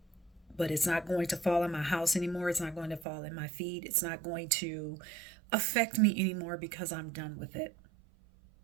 but it's not going to fall in my house anymore. It's not going to fall in my feet. It's not going to affect me anymore because I'm done with it.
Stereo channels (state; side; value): drops out; left; at 3.1 s